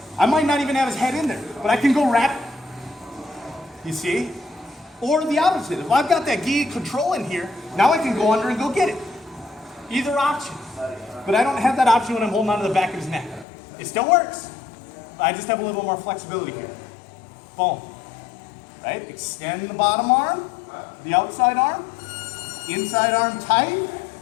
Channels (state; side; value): drops out; right; at 13.5 s